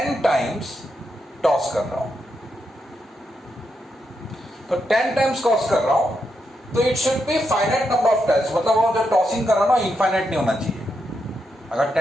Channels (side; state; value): both; normal; correlation 0.83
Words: टाइम्स टॉस कर रहा हूं. तो 10 टाइम्स टॉस कर रहा हूं तो it should be finite number of trials. मतलब वो जो टॉसिंग कर रहा हूं ना इनफाइनाइट नहीं होना चाहिए. अगर